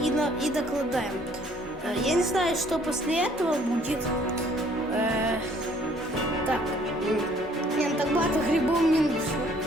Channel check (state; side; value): normal; both; correlation 0.60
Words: докладаем. Я не знаю, что после этого будет. Так. Нет, так багато грибов не нужно.